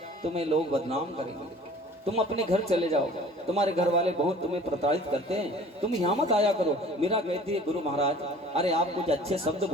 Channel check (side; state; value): both; normal; correlation 0.47